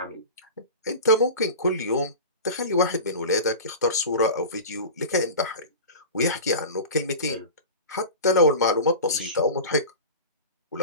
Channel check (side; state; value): both; inverted; correlation -0.32